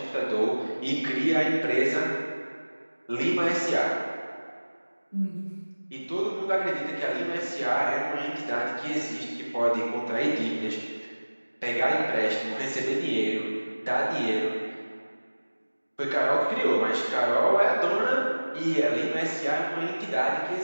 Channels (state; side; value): inverted; both; correlation -1.00